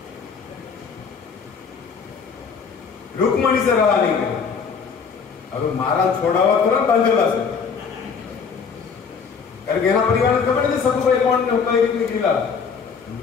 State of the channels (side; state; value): right; quieter; 5.9 dB